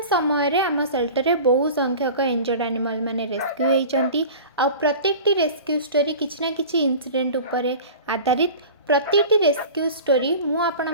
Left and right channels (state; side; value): inverted; both; correlation -0.37